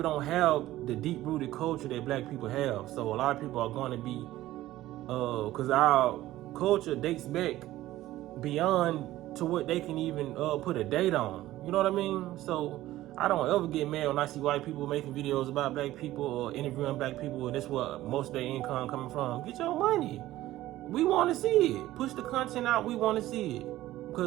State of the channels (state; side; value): quieter; left; 15.4 dB